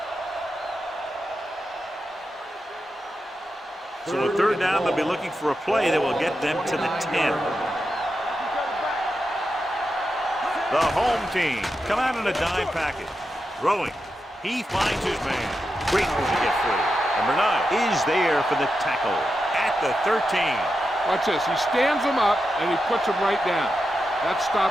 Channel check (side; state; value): both; normal; correlation 0.88